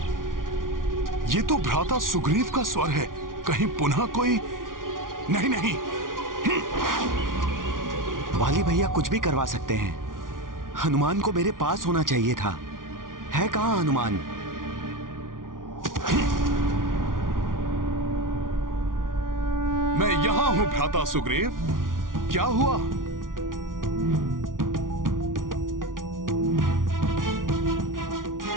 ये तो भ्राता सुग्रीव का स्वर है। कहीं पुनः कोई? नहीं नहीं, वाली भैया कुछ भी करवा सकते हैं। हनुमान को मेरे पास होना चाहिए था। है कहाँ हनुमान? मैं यहां हूं भ्राता सुग्रीव। क्या हुआ?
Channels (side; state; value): left; late; 0.89 ms